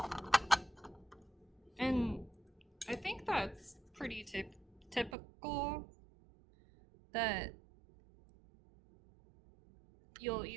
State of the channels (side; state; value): left; drops out; at 5.2 s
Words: And I think that's pretty typical that you'll